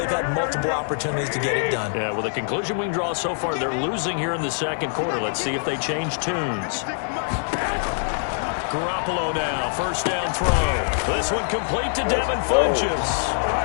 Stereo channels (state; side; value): silent; right; 60 dB below the other